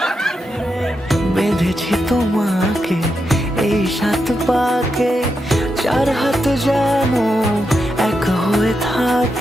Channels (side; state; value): both; normal; correlation 0.85